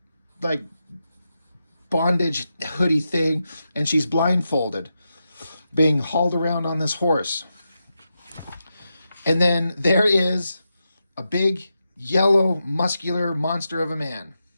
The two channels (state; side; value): inverted; both; correlation -0.87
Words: like bondage hoodie thing, and she's blindfolded, being hauled around on this horse. And then there is a big, yellow, muscular monster of a man.